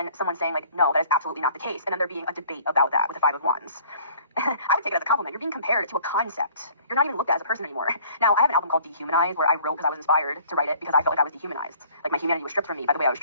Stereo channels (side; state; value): both; inverted; correlation -0.53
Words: someone saying like, no, that is absolutely not the case. And then there being a debate about that with the Five of Wands. I would take it as a compliment. You're being compared to a concept. You're not even looked at as a person anymore. Now, I have an album called Dehumanized where I wrote because I was inspired to write it because I felt like I was dehumanized. Like my humanity was stripped from me by the way I was